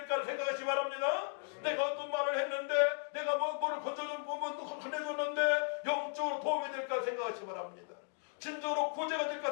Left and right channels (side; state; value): right; silent; 54 dB below the other